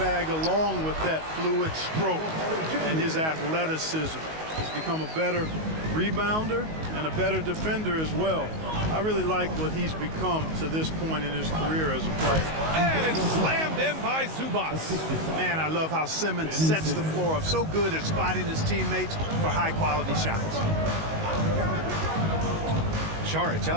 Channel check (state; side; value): late; left; 19 ms